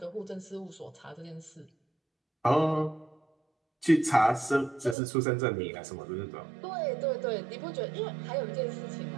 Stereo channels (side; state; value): left; drops out; at 5.0 s